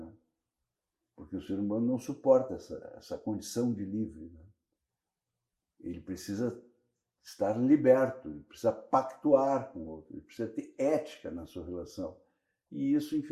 Porque o ser humano não suporta essa condição de livre, né? Ele precisa estar liberto, ele precisa pactuar com o outro, ele precisa ter ética na sua relação. E isso,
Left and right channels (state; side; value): identical; both; correlation 1.00